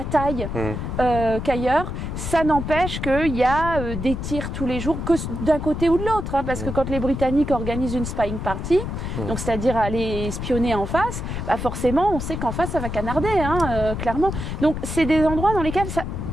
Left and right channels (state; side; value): noise; left; rumble, 5 dB below the sound